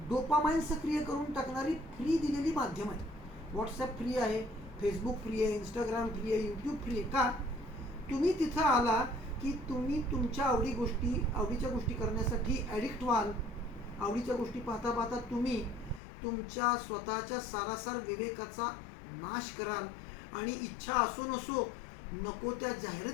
डोपामाइन सक्रिय करून टाकणारी फ्री दिलेली माध्यम आहे. व्हॉट्सॲप फ्री आहे, फेसबुक फ्री आहे, इंस्टाग्राम फ्री आहे, यूट्यूब फ्री आहे. का? तुम्ही तिथं आला की तुम्ही तुमच्या आवडीच्या गोष्टी करण्यासाठी ॲडिक्ट व्हाल. आवडीच्या गोष्टी पाहता पाहता तुम्ही तुमच्या स्वतःच्या सारासार विवेकाचा नाश कराल आणि इच्छा असो नसो नको त्या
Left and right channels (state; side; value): drops out; right; at 16.0 s